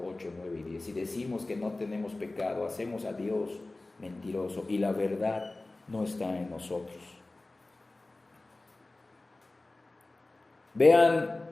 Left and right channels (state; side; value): quieter; right; 3.0 dB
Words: 8, 9 y 10. Si decimos que no tenemos pecado, hacemos a Dios mentiroso y la verdad no está en nosotros. Vean